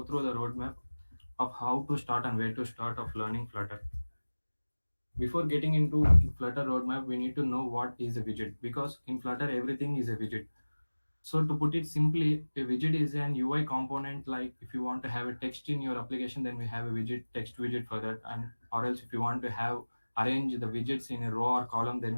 through the roadmap of how to start and where to start of learning Flutter. Before getting into Flutter roadmap, we need to know what is a widget, because in Flutter everything is a widget. So to put it simply, a widget is an UI component. Like if you want to have a text in your application, then we have a widget, text widget for that. And or else if you want to have arrange the widgets in a row or column, then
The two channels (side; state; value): both; inverted; correlation -1.00